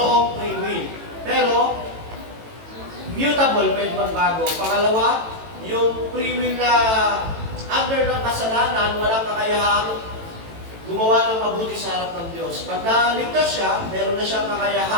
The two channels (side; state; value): left; late; 18 ms